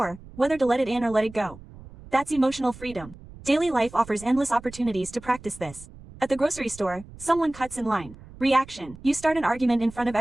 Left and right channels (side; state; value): right; noise; rumble, 18 dB below the sound